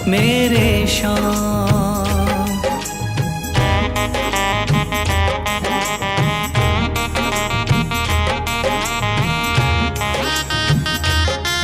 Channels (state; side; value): identical; both; correlation 1.00